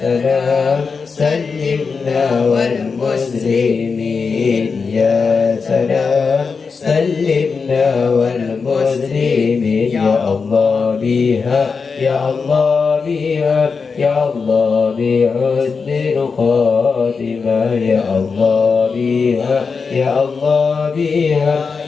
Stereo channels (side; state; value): right; quieter; 5.1 dB